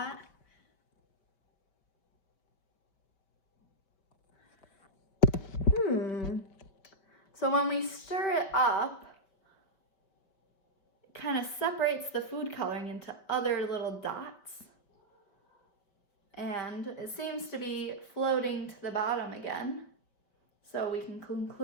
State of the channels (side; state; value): right; late; 5.2 ms